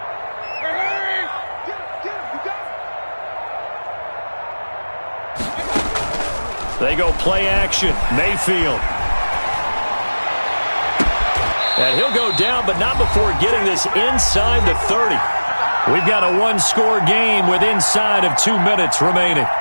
They go play action. Mayfield. And he'll go down, but not before getting this inside the 30. We've got a one-score game with inside of 2 minutes remaining.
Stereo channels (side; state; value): both; inverted; correlation -1.00